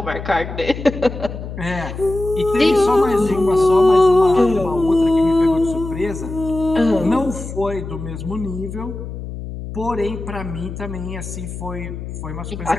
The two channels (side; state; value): left; noise; hum, 9 dB below the sound